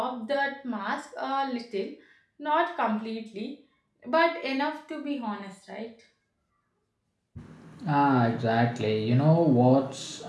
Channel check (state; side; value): identical; both; correlation 1.00